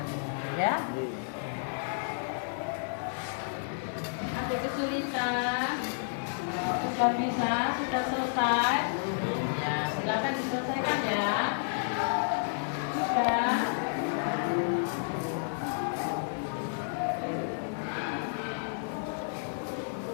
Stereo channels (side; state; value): right; silent; digital silence